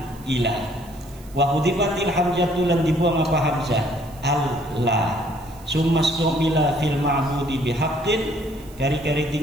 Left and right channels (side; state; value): right; noise; hiss, 24 dB below the sound